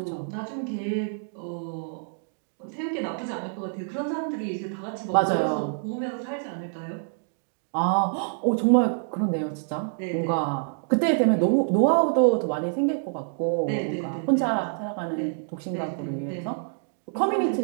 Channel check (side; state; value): left; silent; digital silence